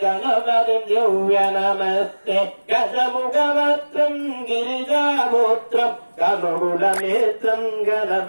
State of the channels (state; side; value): inverted; both; correlation -1.00